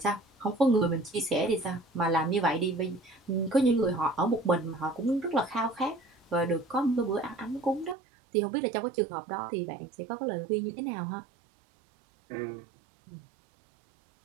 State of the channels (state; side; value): drops out; left; at 8.0 s